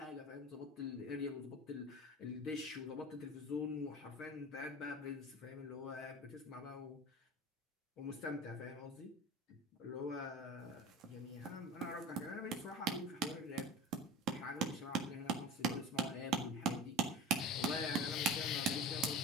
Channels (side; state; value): both; normal; correlation 0.34